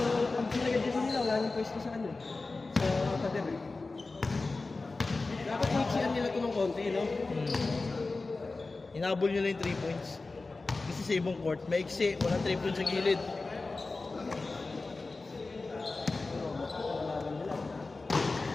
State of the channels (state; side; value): quieter; right; 3.6 dB